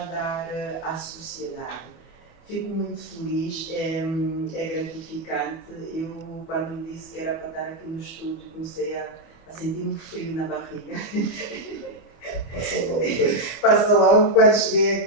dar à sociedade. Fico muito feliz, é gratificante. Eu, quando me disse que era para estar aqui no estúdio, comecei a sentir um frio na barriga. Passa logo quando cheguei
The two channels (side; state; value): right; late; 24 ms